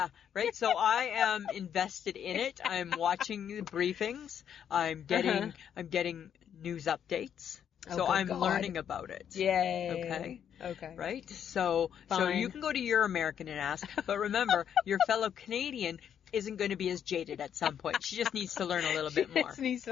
right? So I am invested in it. I'm watching the briefings. I'm getting news updates. So I'm learning about it. Yay. Okay. Right? So you can go to your American and ask. But remember, your fellow Canadian isn't going to be as jaded at some point. She just needs to learn a little bit more. She just needs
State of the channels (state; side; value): quieter; right; 8.8 dB